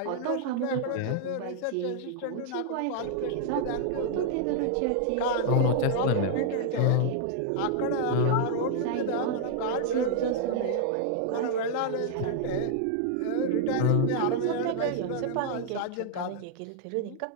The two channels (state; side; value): different; both; correlation -0.01